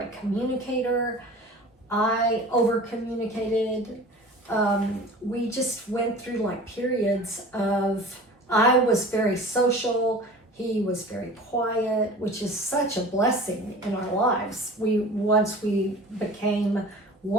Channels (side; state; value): both; normal; correlation 0.40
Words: communicator. I over communicated. We just went through like periods of, I was very social. He was very quiet, which is such a blessing in our lives. Once we became